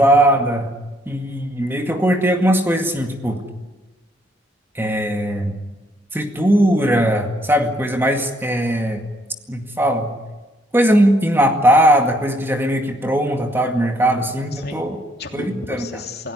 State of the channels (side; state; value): both; normal; correlation 0.68